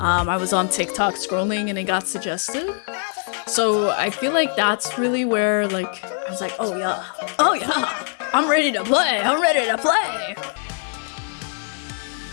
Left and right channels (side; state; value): right; silent; 59 dB below the other